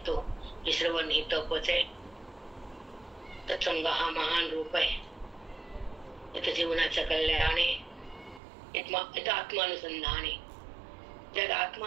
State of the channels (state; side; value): drops out; left; at 8.4 s